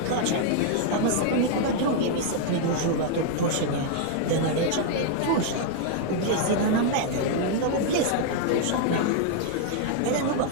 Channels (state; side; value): different; both; correlation 0.00